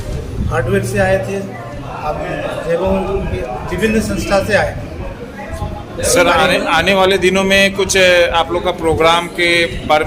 हार्डवेयर से आए थे, आपके विभिन्न संस्था से आए थे। सर आने वाले दिनों में कुछ आप लोग का प्रोग्राम के बारे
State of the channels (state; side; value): identical; both; correlation 1.00